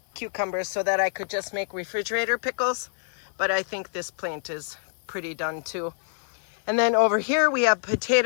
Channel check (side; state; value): right; silent; digital silence